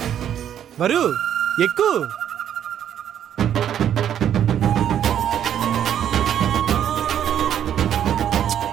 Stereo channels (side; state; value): left; quieter; 9.9 dB